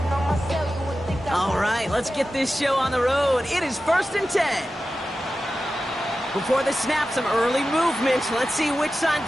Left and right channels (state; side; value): normal; both; correlation 0.93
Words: Let's get this show on the road. It is 1st and 10. Before the snap, some early movement. Let's see which side